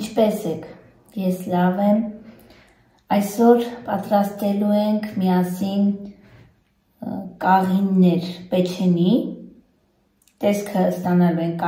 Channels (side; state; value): both; identical; correlation 1.00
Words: եք, ես լավ եմ, այսօր պատրաստելու ենք միասին կաղիններ պեչենի, տեսքը ստանալու ենք